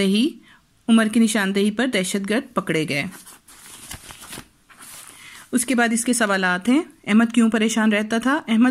उमर की निशानदेही पर दहशतगर्द पकड़े गए। उसके बाद इसके सवालात हैं: अहमद क्यों परेशान रहता था?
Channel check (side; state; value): both; identical; correlation 1.00